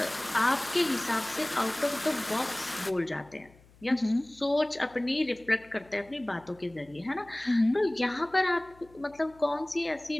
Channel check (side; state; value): left; noise; hum, 27 dB below the sound